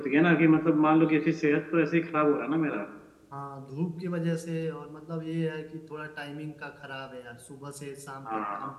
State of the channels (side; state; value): both; identical; correlation 1.00